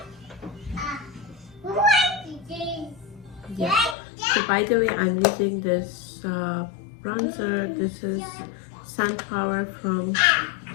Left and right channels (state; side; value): drops out; right; at 4.0 s